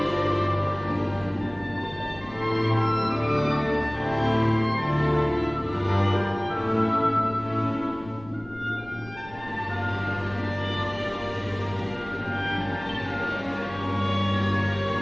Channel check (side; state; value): left; noise; rumble, 21 dB below the sound